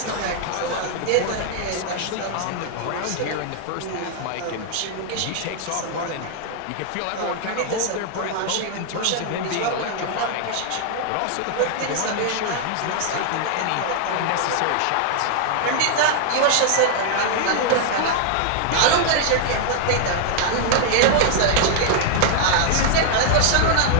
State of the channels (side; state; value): both; different; correlation 0.00